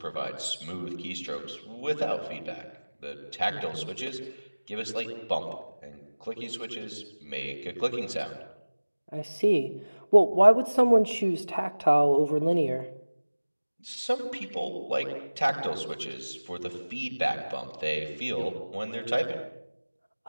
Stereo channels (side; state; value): both; inverted; correlation -1.00